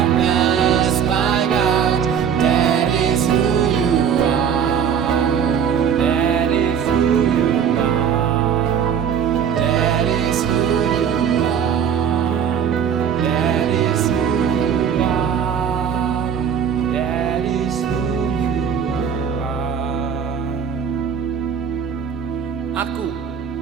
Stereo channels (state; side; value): quieter; left; 7.8 dB